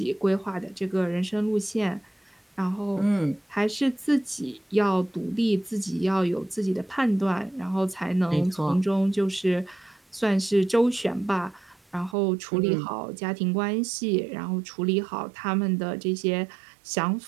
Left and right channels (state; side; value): drops out; left; at 12.2 s